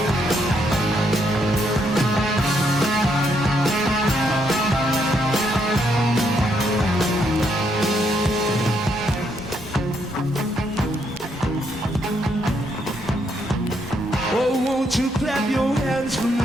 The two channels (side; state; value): both; normal; correlation 0.75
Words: Oh, won't you clap your hands for